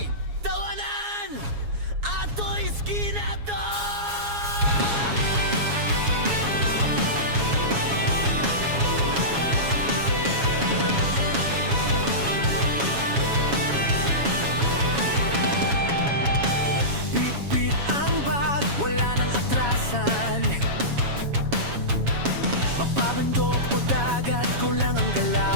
Tawanan! Ato'y skina to! Bit-bit ang bag, wala nang atrasan. Mapabundok o dagat, kulang ang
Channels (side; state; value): left; late; 7.2 ms